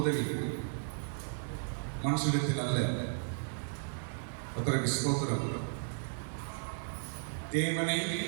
உதவி, மனுஷனிடத்தில் அல்ல. கர்த்தருக்கு ஸ்தோத்திரம். தேவனை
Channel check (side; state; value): left; silent; digital silence